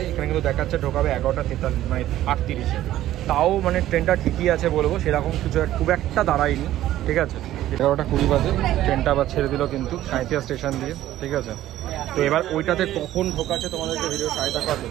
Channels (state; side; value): quieter; left; 13.7 dB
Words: এখানে কিন্তু দেখাচ্ছে ঢোকাবে 11:43 মানে 38-এ। তাও মানে ট্রেনটা ঠিকই আছে বলবো, সেরকম কিছু খুব একটা দাঁড়ায়নি, ঠিক আছে? 11:20 বাজে ট্রেনটা আবার ছেড়ে দিল কিন্তু সাঁইথিয়া স্টেশন দিয়ে, ঠিক আছে? তো এবার ওইটাতে কখন ঢোকাচ্ছে তোমাদেরকে ভিডিও সাহায্য করতে।